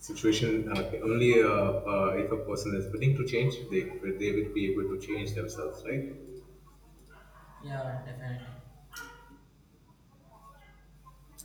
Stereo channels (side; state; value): both; identical; correlation 1.00